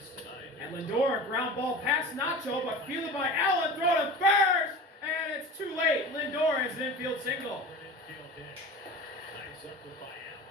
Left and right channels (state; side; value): normal; both; correlation 0.34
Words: And Lindor, a ground ball past Nacho, but fielded by Allen, throw to first, and it's too late. Lindor has an infield single. Nice effort by